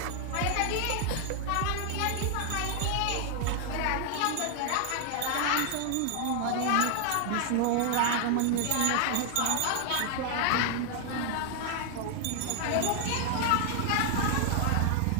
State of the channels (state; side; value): different; both; correlation 0.00